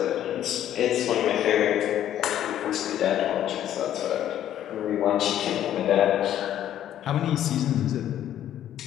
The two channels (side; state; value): right; quieter; 11.4 dB